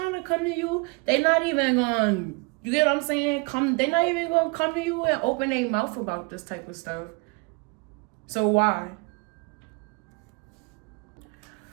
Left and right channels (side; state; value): left; quieter; 30.3 dB